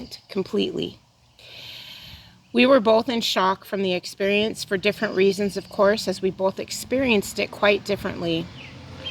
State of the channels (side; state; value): both; identical; correlation 1.00